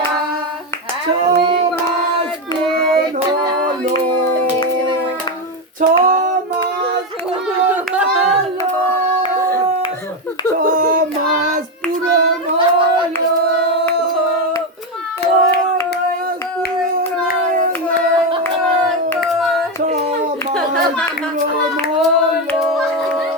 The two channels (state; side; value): normal; both; correlation 0.10